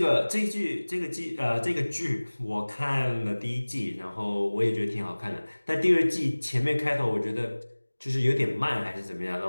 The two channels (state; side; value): inverted; both; correlation -1.00